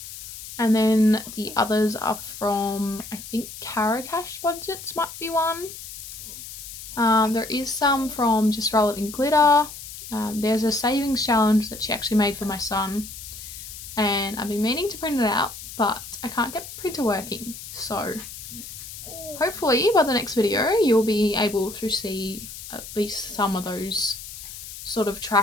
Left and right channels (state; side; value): noise; left; hiss, 12 dB below the sound